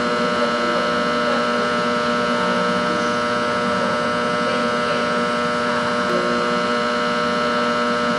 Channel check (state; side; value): identical; both; correlation 1.00